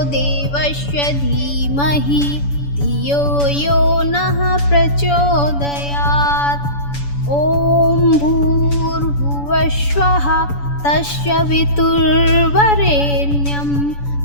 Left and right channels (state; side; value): late; right; 7.0 ms